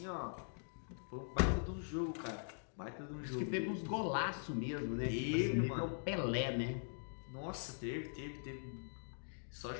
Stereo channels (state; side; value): silent; right; digital silence